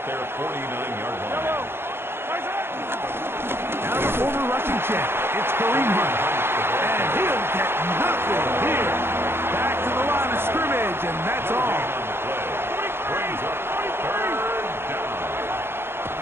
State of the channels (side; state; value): left; late; 0.11 ms